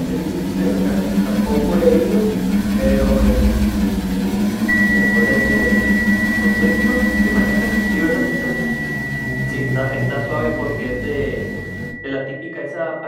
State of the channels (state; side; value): identical; both; correlation 1.00